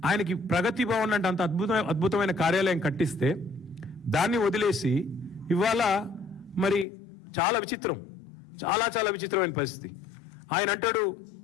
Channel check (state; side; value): drops out; right; at 6.9 s